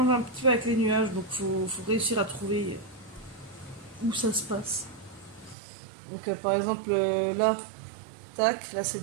un petit peu avec les nuages, donc faut réussir à trouver où ça se passe. Donc par exemple là, tac, là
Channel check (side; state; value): left; drops out; at 5.6 s